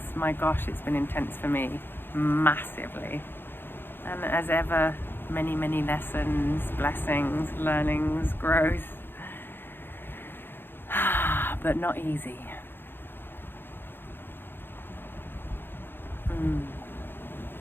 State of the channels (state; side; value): late; right; 0.10 ms